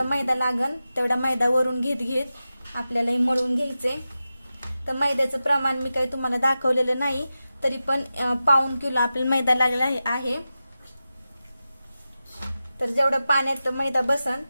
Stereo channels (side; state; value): both; inverted; correlation -0.93